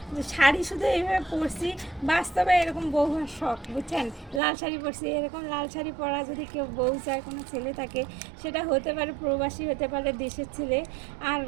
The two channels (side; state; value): left; drops out; at 4.4 s